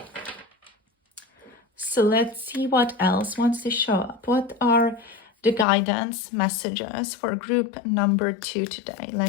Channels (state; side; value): drops out; right; at 5.7 s